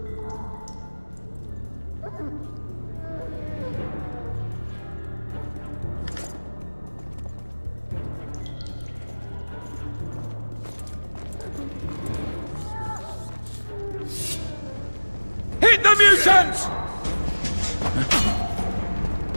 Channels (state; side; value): inverted; both; correlation -1.00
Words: Hit the mutants!